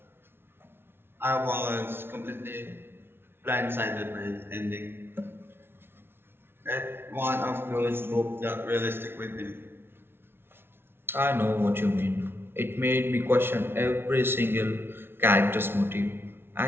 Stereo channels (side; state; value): left; late; 0.11 ms